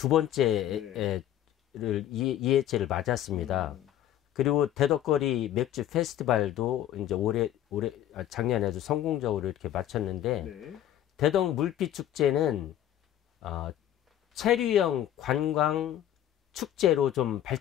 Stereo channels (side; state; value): right; quieter; 11.7 dB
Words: 번째를 네. 2회째를 맞았습니다. 그리고 대덕거리 맥주 페스티벌도 이제 작년에도 성공적으로 이렇게 마쳤는데 네. 대덕 물빛 축제는 체류형 관광 축제로 좀